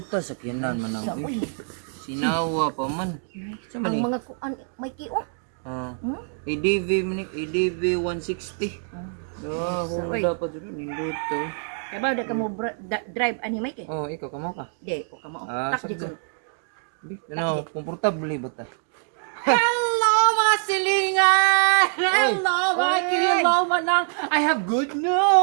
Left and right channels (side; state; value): left; silent; digital silence